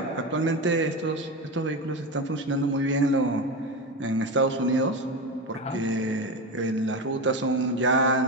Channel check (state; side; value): normal; both; correlation 0.19